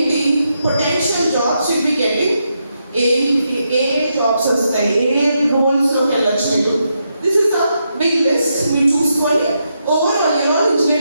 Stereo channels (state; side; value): inverted; both; correlation -0.83